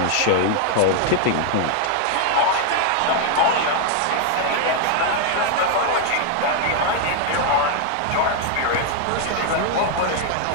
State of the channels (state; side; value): different; both; correlation 0.00